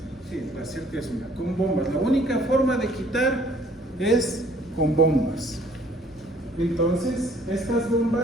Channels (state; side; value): normal; both; correlation 0.59